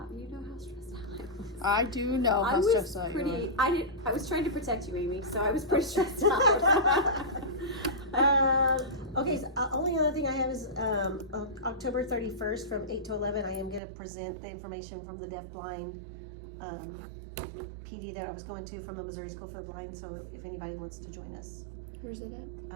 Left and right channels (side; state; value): left; drops out; at 13.8 s